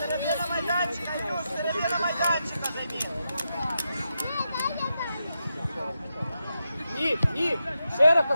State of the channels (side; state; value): both; inverted; correlation -0.86